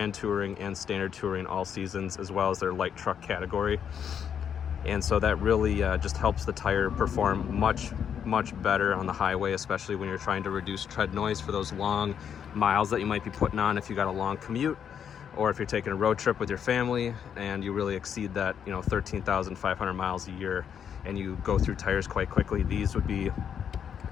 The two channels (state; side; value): quieter; right; 8.1 dB